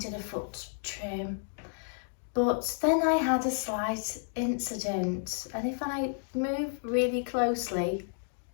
a foot trim. But then I had a slight incident, and if I move really closely,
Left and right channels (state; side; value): silent; right; digital silence